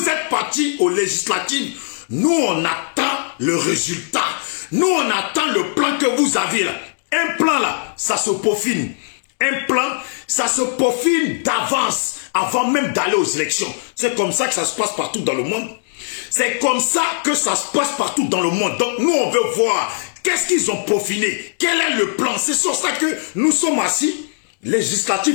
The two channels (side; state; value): right; silent; digital silence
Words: êtes partis aux législatives. Nous, on attend le résultat. Nous, on attend le plan que vous avez là. Un plan là, ça se peaufine. Un plan, ça se peaufine d'avance, avant même d'aller aux élections. C'est comme ça que ça se passe partout dans le monde. C'est comme ça que ça se passe partout dans le monde. Donc nous, on veut voir qu'est-ce qu'ils ont peaufiné. Quel est le plan? C'est sur ça que nous sommes assis.